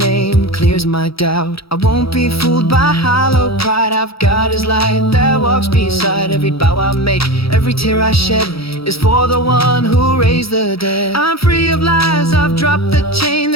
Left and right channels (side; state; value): right; late; 0.76 ms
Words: clears my doubt. I won't be fooled by hollow pride. I've got his light that walks beside every bow I make. Every tear I shed is for the one who raised the dead. I'm free of lies, I've dropped the chain.